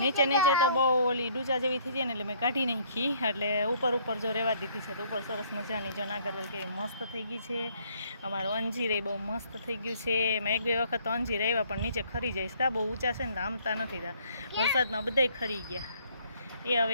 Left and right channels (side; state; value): both; inverted; correlation -0.62